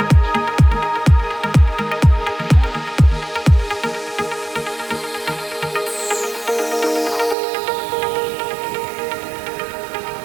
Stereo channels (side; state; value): left; drops out; at 7.4 s